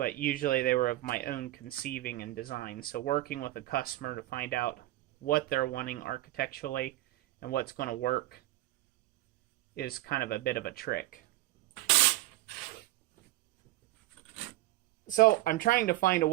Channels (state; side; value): quieter; left; 17.0 dB